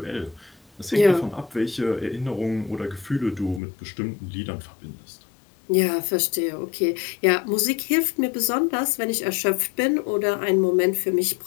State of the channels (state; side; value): drops out; right; at 3.6 s